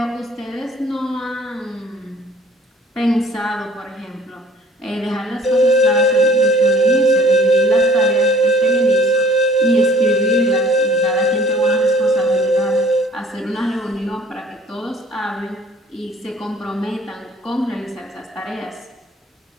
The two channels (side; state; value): both; normal; correlation 0.54